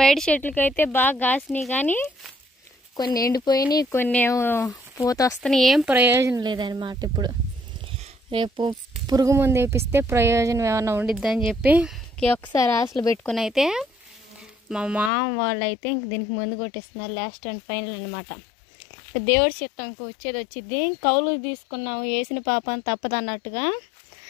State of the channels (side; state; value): right; drops out; at 15.1 s